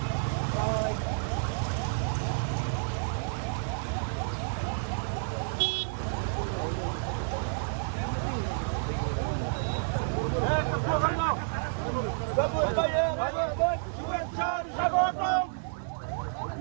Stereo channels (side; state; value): left; silent; 55 dB below the other